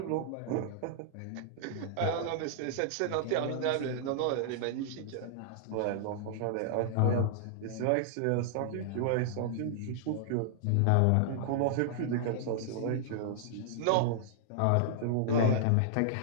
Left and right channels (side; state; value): both; different; correlation -0.01